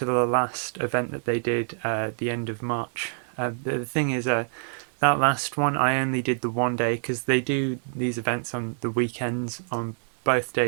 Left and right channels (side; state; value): left; silent; digital silence